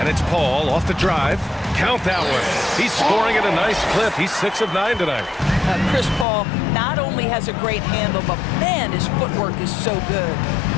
it's Paul off the drive. Count that one. He's scoring at a nice clip. He's 6 of 9 tonight. Chris Paul not only has a great handle, but man, his footwork is so good.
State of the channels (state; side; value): drops out; right; at 6.2 s